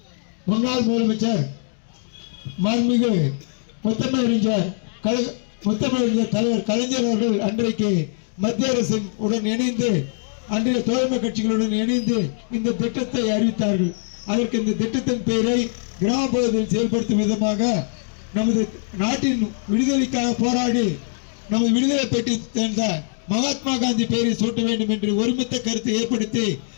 முன்னாள் முதலமைச்சர் மாண்புமிகு முத்தமிழறிஞர் தலைவர் கலைஞர் அவர்கள் அன்றைக்கு மத்திய அரசின் உடன் இணைந்து அன்றைய தோழமை கட்சிகளுடன் இணைந்து இந்த திட்டத்தை அறிவித்தார்கள். அதற்கு இந்த திட்டத்தின் பெயரை கிராம பகுதியில் செயல்படுத்தும் விதமாக நமது நாட்டின் விடுதலைக்காக போராடி நமது விடுதலை பெற்று சேர்ந்த மகாத்மா காந்தி பெயரை சூட்ட வேண்டும் என்று ஒருமித்த கருத்தை ஏற்படுத்தி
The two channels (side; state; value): right; silent; digital silence